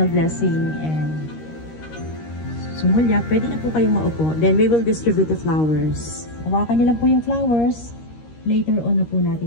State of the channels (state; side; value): late; right; 13 ms